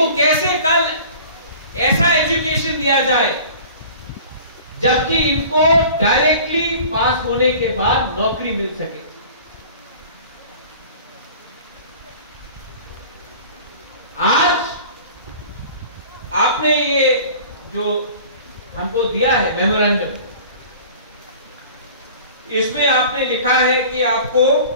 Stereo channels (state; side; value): inverted; both; correlation -0.43